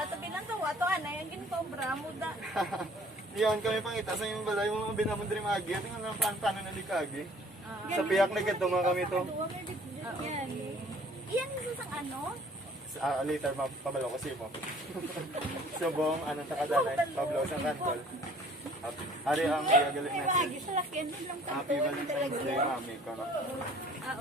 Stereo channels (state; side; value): normal; both; correlation 0.53